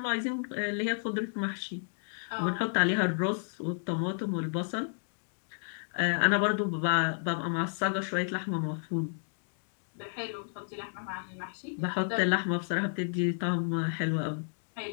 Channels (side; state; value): right; silent; digital silence